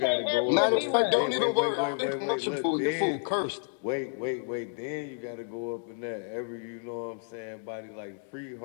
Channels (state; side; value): silent; right; 58 dB below the other